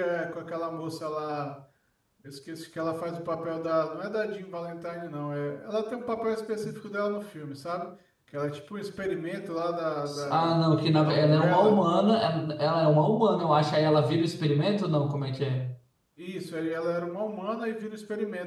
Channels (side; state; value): both; identical; correlation 1.00